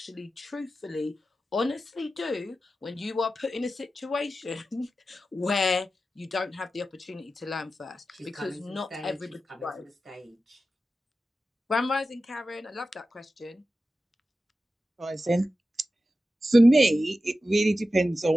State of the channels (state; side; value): normal; both; correlation 0.93